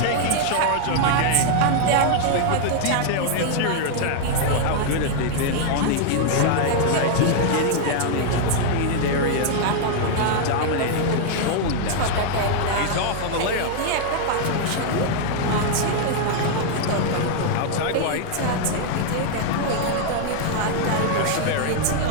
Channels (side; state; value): both; different; correlation 0.00